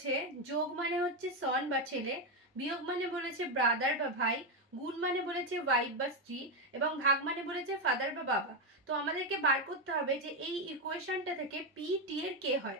যোগ মানে হচ্ছে সন বা ছেলে, বিয়োগ মানে বলেছে ব্রাদার বা ভাই, গুণ মানে বলেছে ওয়াইফ বা স্ত্রী এবং ভাগ মানে বলেছে ফাদার বা বাবা। তো আমাদেরকে বার করতে হবে যে এই ইকুয়েশনটা থেকে পি টি এর কে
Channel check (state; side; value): normal; both; correlation 0.07